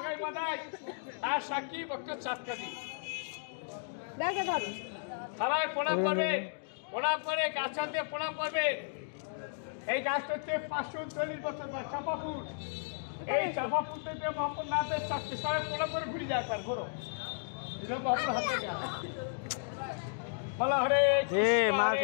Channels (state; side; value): silent; right; digital silence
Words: মাদাই, তার সাক্ষী ভক্ত চাঁদ কাজী। সবাই প্রণাম করবে, প্রণাম করে গাছ দিয়ে প্রণাম করবে। এই গাছটা হচ্ছে 539 বছর বয়স, চাপা ফুল। এই চাপা ফুল থেকে মহাপুর নাথের চাকরি সবাই প্রণাম করে ঘুরে যায় একবার ঘোরো। মহাপুর হাতে গাছ বলা হরে